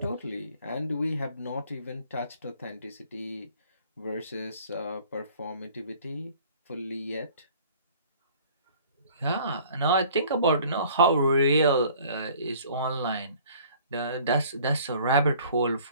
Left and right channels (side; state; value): both; inverted; correlation -0.52